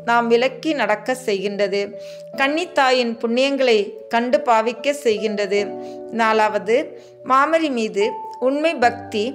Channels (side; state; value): both; identical; correlation 1.00